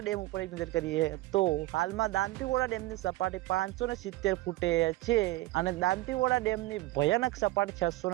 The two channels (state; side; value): quieter; left; 18.3 dB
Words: ડેમ ઉપર એક નજર કરીએ તો હાલમાં દાંતીવાડા ડેમની સપાટી 570 ફૂટે છે અને દાંતીવાડા ડેમની ભયાનક સપાટી